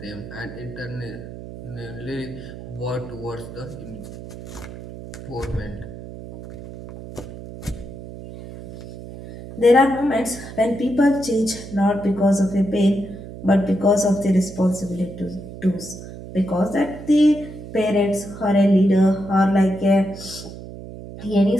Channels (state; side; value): noise; right; hum, 13 dB below the sound